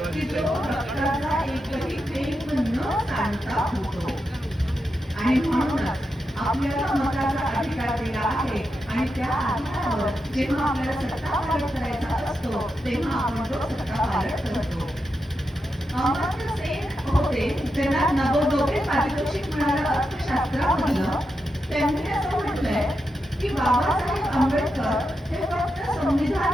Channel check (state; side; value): normal; both; correlation 0.87